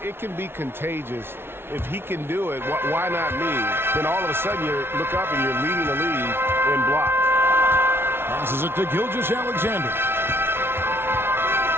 can be contagious. If he can do it, why not me? Then all of a sudden you look up and you're leading the league in block. Passes it to Gilgeous-Alexander.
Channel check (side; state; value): left; late; 0.11 ms